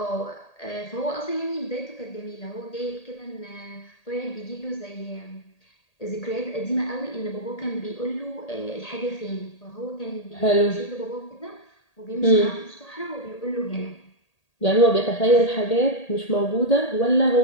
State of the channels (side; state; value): right; late; 1.8 ms